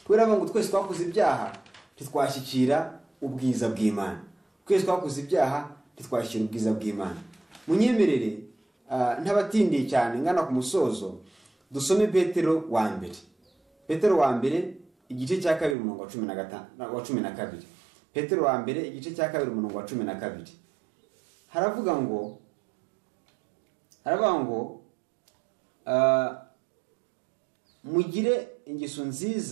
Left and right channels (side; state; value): left; drops out; at 15.8 s